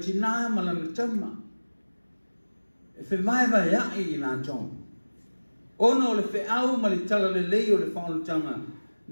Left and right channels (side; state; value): both; inverted; correlation -1.00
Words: ma le tama. E whiwai ai i nā tō. Ona o le whiau ma le tala le lei o le whaolutanga,